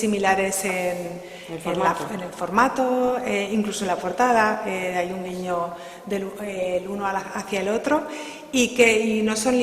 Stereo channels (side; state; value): both; identical; correlation 1.00